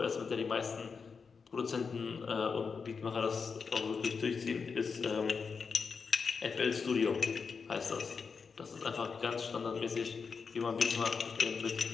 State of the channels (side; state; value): right; quieter; 5.4 dB